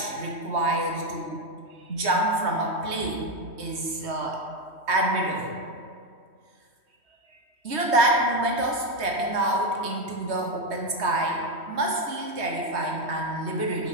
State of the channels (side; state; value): left; late; 3.1 ms